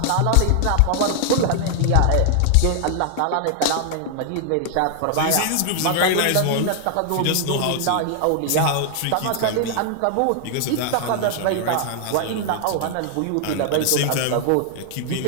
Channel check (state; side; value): different; both; correlation 0.00